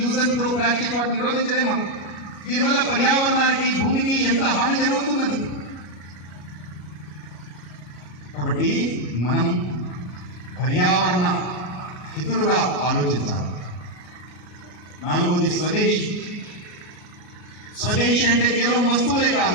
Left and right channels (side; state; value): right; late; 33 ms